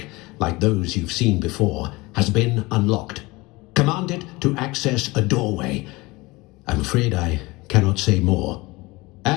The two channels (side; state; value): right; quieter; 22.6 dB